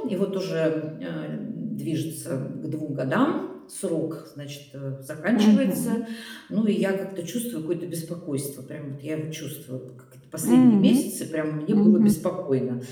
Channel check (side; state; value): both; identical; correlation 1.00